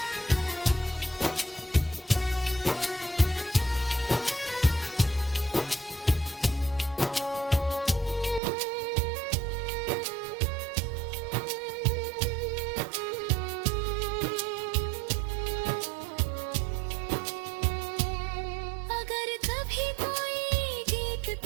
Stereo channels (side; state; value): left; drops out; at 8.4 s